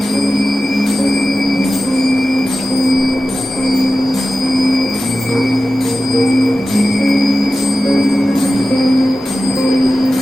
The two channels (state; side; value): normal; both; correlation 0.94